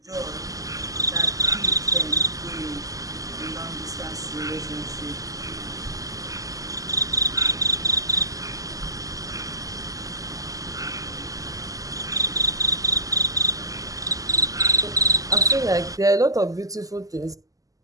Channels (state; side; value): late; left; 0.17 ms